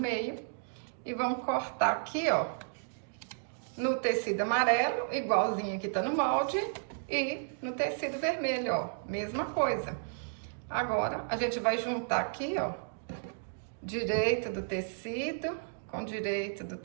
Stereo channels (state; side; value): silent; left; digital silence